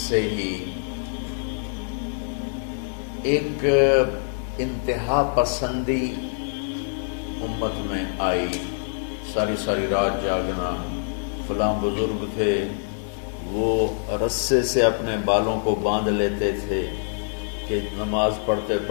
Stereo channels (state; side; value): silent; right; digital silence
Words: ہی ایک انتہا پسندی امت میں آئی، ساری رات جاگنا۔ فلاں بزرگ تھے، وہ رسے سے اپنے بالوں کو باندھ لیتے تھے کہ نماز پڑھتے